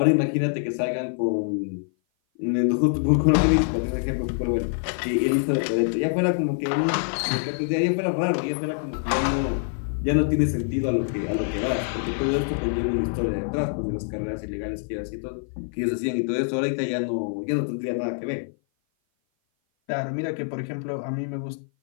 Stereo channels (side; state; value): right; silent; 56 dB below the other